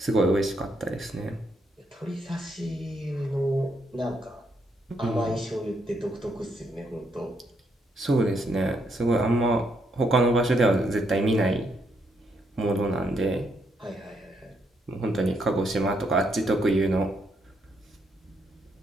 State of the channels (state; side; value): normal; both; correlation 0.76